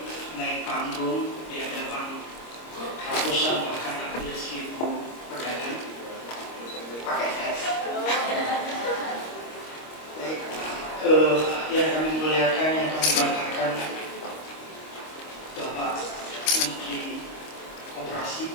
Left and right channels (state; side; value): late; right; 26 ms